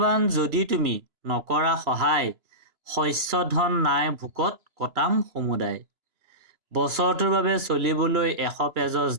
যদি তুমি নকৰা সহায়, শস্য ধন নাই ভোকত কটাম সমুদায়। বছৰটোৰ বাবে চলিবলৈ 100 পেজছ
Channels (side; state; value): left; late; 3.0 ms